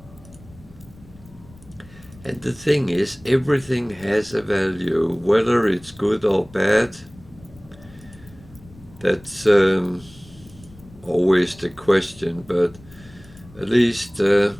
And the thing is, everything has a value, whether it's good or bad. That's always the question, but at least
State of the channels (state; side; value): noise; left; rumble, 23 dB below the sound